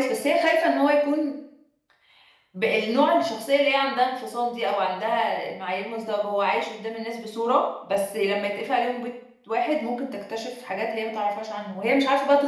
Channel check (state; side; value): identical; both; correlation 1.00